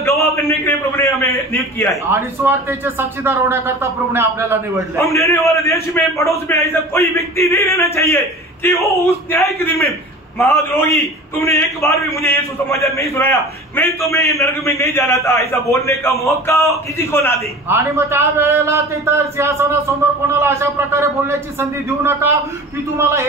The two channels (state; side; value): normal; both; correlation 0.38